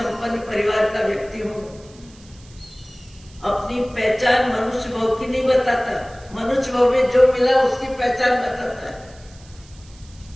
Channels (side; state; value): right; noise; hiss, 25 dB below the sound